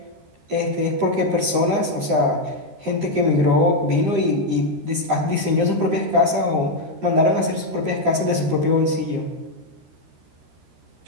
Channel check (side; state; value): left; late; 13 ms